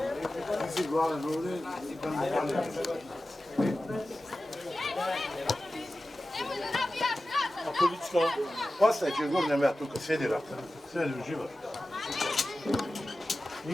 Ti si glavan ovdje, idemo dalje. A polička? Ostaje ćeš gurnem ja tu kad sjedi uživa.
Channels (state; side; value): normal; both; correlation 0.95